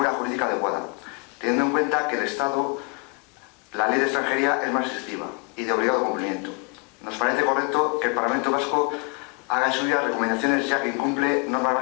jurídica adecuada, teniendo en cuenta que el Estado, la ley de extranjería es más restrictiva y de obligado cumplimiento. Nos parece correcto que el Parlamento Vasco haga suyas recomendaciones, ya que incumple normas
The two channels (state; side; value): quieter; right; 32.2 dB